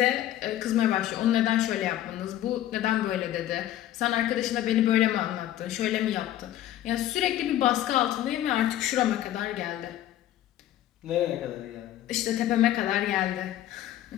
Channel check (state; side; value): quieter; right; 12.9 dB